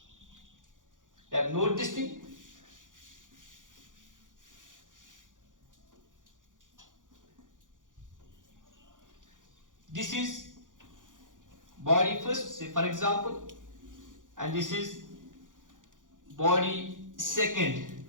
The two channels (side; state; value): left; late; 0.88 ms